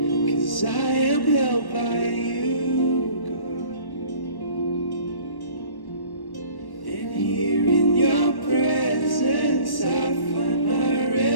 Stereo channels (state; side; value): late; right; 1.1 ms